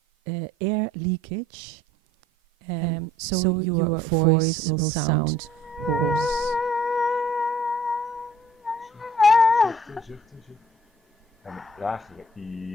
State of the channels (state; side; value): normal; both; correlation 0.56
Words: air leakage, so your voice will sound hoarse. Zuchten, zuchten, zuchten. En een lagere